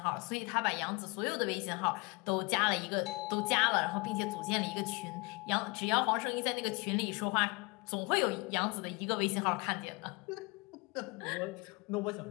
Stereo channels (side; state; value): right; quieter; 27.3 dB